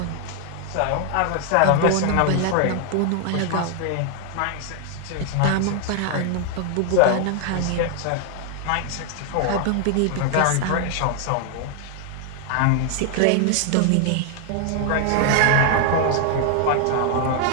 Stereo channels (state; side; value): different; both; correlation 0.00